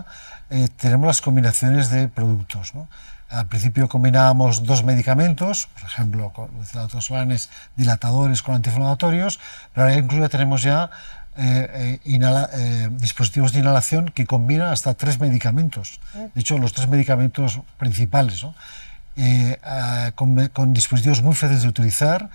tenemos las combinaciones de productos, ¿no? Al principio combinábamos dos medicamentos, por ejemplo, con Solanes, dilatadores con antiinflamatorios, pero ahora incluso tenemos ya dispositivos de inhalación que combinan hasta 3 medicamentos. De hecho, los 3 medicamentos principales, ¿no? Con dispositivos muy fáciles de utilizar,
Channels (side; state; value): both; inverted; correlation -1.00